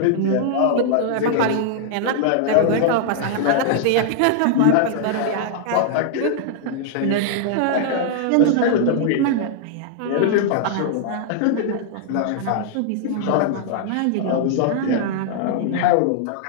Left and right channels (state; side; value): different; both; correlation -0.01